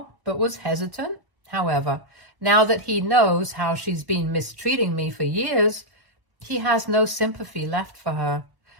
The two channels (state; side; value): late; left; 1.0 ms